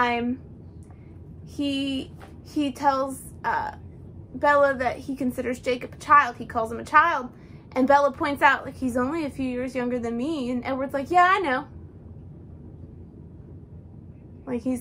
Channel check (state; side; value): identical; both; correlation 1.00